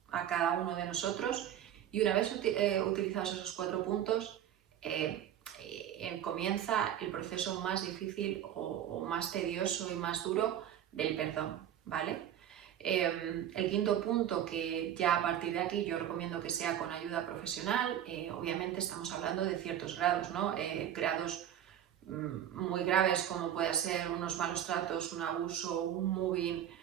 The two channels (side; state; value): left; quieter; 10.6 dB